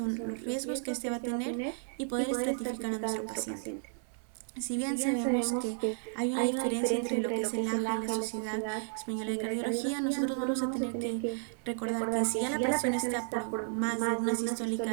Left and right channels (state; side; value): silent; left; 56 dB below the other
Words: que son los riesgos que este va a tener y poder estratificar a nuestro paciente. Si bien sabemos que hay una diferencia entre lo que es el AJA y la Sociedad Española de Cardiología, nosotros vamos a tener que recordar que si ya la presión está por más de una